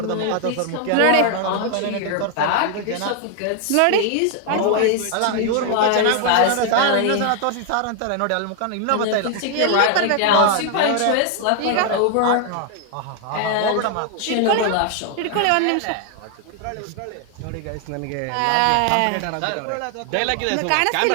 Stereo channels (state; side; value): different; both; correlation 0.00